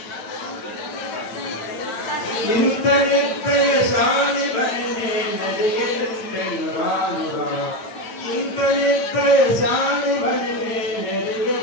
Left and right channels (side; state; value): right; late; 9.1 ms